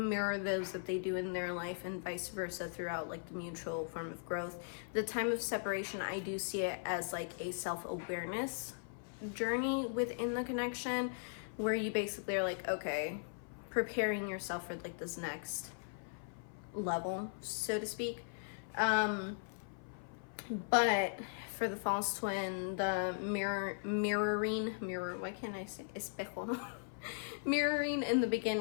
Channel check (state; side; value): silent; right; 52 dB below the other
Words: those that they do in their life, and vice versa throughout like the mutual form of growth. The time of separation, I do see it as like a self-awareness journey within the connection, where you basically are like, okay, preparing yourself for like this next level, so to speak. But for the false twin, the mirroring, why can't I say espejo? Mirroring in the